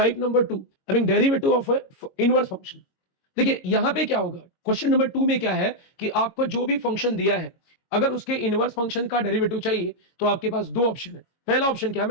number 2 I mean derivative of inverse function. देखिए यहां पे क्या होगा, क्वेश्चन नंबर 2 में क्या है कि आपको जो भी फंक्शन दिया है अगर उसके इनवर्स फंक्शन का डेरिवेटिव चाहिए तो आपके पास 2 ऑप्शन है। पहला ऑप्शन क्या है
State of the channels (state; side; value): late; right; 22 ms